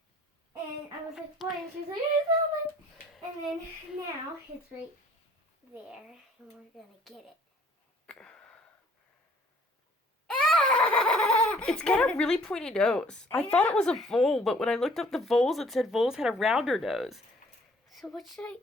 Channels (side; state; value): both; normal; correlation 0.57